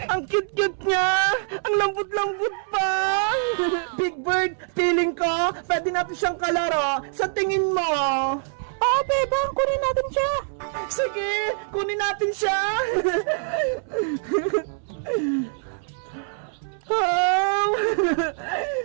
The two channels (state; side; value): silent; left; 62 dB below the other